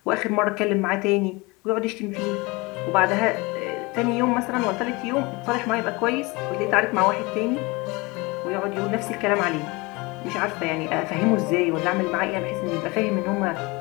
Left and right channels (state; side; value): quieter; right; 25.0 dB